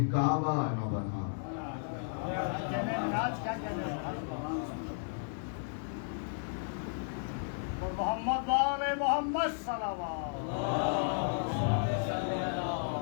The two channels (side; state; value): right; silent; digital silence